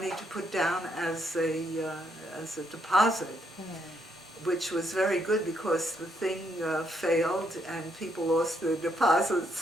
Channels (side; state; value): both; normal; correlation 0.75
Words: to put down as a deposit, which was very good because the thing failed and people lost their